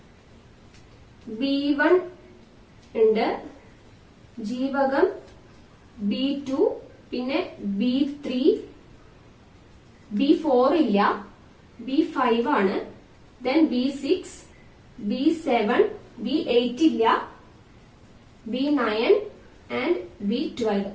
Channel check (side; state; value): both; identical; correlation 1.00